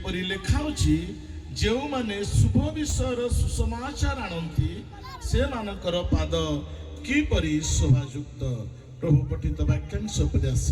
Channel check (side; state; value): both; identical; correlation 1.00